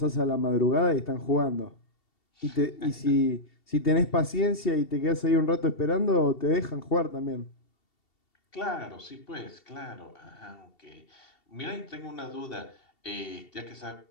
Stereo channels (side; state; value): right; late; 2.7 ms